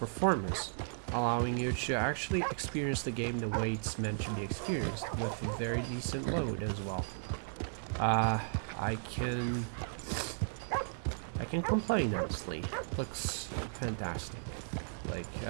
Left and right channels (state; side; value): silent; left; digital silence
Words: allowing you to actually experience the game the way it's meant to be experienced, with a very decent load as well. I can complain, honestly. Looks fantastic. Like,